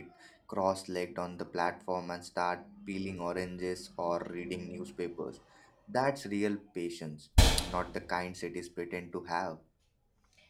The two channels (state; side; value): identical; both; correlation 1.00